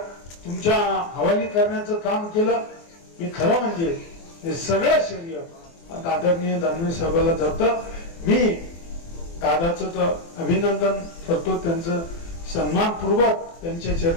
तुमच्या हवाली करण्याचं काम केलं. मी खरं म्हणजे हे सगळं श्रेय आदरणीय दानवे साहेबाला जातं. मी दादाचं तर अभिनंदन करतो, त्यांचं सन्मानपूर्वक त्यांच्या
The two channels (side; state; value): right; late; 24 ms